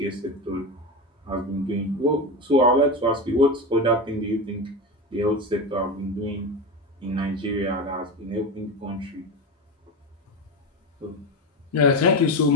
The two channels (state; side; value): normal; both; correlation 0.20